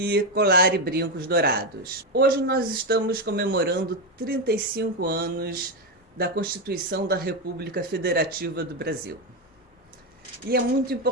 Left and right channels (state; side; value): normal; both; correlation 0.10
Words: colar e brincos dourados. Hoje nós estamos comemorando 35 anos da Constituição da República Federativa do Brasil. E é muito